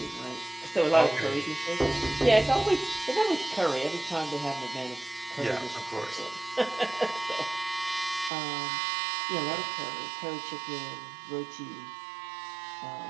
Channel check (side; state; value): left; drops out; at 8.3 s